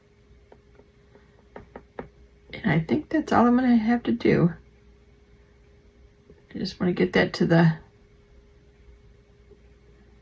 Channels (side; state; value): both; identical; correlation 1.00